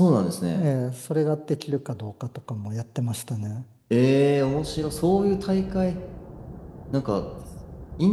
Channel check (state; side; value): identical; both; correlation 1.00